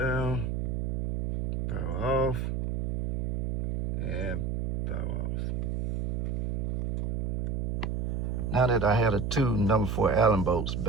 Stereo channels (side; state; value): right; noise; hum, 1 dB below the sound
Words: Power off. And power off. Now that I had the two number 4 Allen bolts